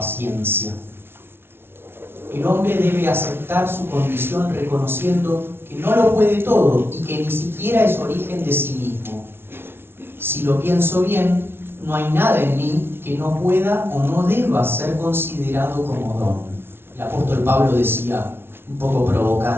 El hombre debe aceptar su condición reconociendo que no lo puede todo y que ni siquiera es origen de sí mismo. Si lo pienso bien, no hay nada en mí que no pueda o no deba ser considerado como don. El apóstol Pablo decía, un poco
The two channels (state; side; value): late; left; 0.11 ms